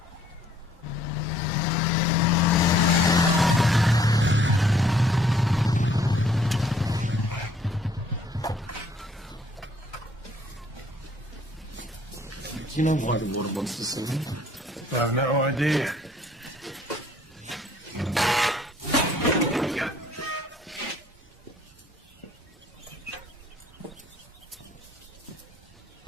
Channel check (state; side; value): normal; both; correlation 0.61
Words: Do you know why the water wants to sing? I have no idea.